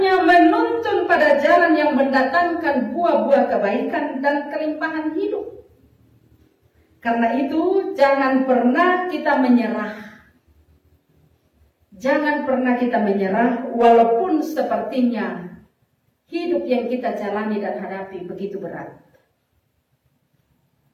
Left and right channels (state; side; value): identical; both; correlation 1.00